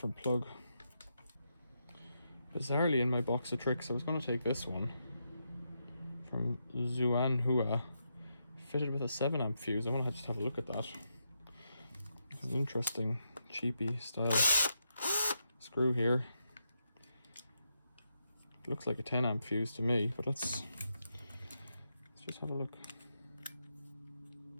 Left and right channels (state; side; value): inverted; both; correlation -0.83